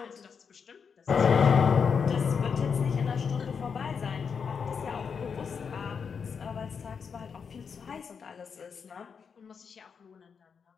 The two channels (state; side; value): quieter; right; 6.2 dB